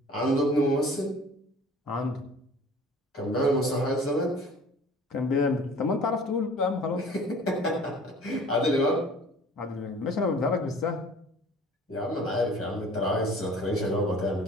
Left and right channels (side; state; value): both; normal; correlation 0.47